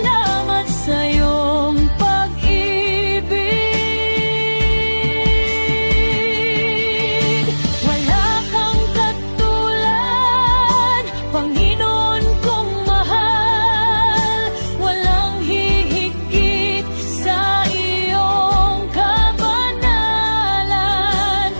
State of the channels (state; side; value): inverted; both; correlation -1.00